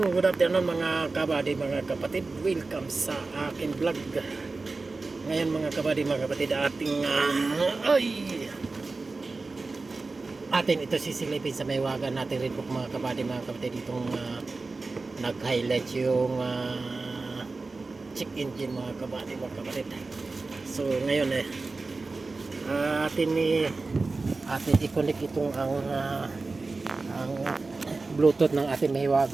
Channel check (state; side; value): quieter; left; 3.7 dB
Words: mga kabady, mga kapatid. Welcome sa akin vlog. Ngayon mga kabady, mga kapatid, atin ito sisilipin sa maywagan natin red book mga kabady, mga kapatid. Itong nag-highlight yung check engine mga kabady, mga kapatid. So ngayon atin i-connect itong ang Bluetooth ng ating